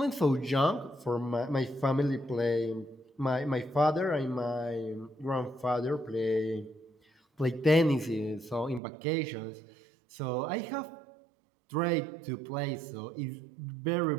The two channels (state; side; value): drops out; left; at 8.8 s